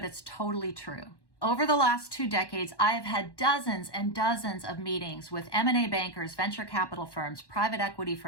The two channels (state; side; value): late; right; 1.1 ms